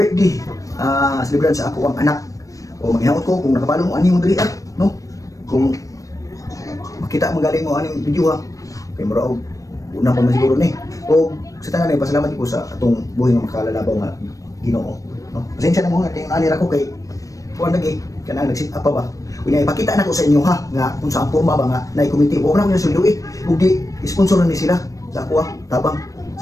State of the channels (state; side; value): late; right; 0.16 ms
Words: celebration sa ako ang anak. O maghinawot ko kung nakabalo mo ani mo diri no? Kung makita magaling mo aning video ha. Kay mura og una pa man siguro ni. O sa tanan ay pasalamat ko sa atong buhay nga makalalabaw nga Ginoo. No? Pasensya na mo nga kay ani ra ko kay kuan lagi kanang nag-sit up pa ba. Kunya ipakita na ko sa inyo ha nga kung saan porma ba nga nay committee. Wa na ko sulduit ug di sponsoran ni sila sa ako tabang